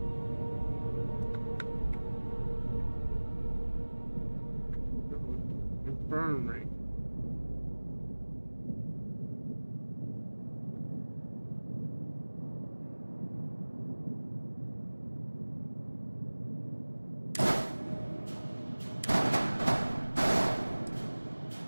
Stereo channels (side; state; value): both; inverted; correlation -1.00